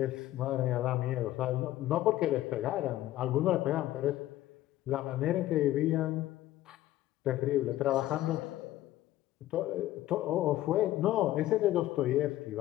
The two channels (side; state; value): right; quieter; 14.7 dB